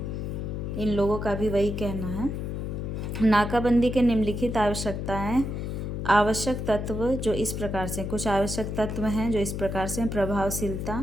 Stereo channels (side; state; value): left; noise; hum, 4 dB below the sound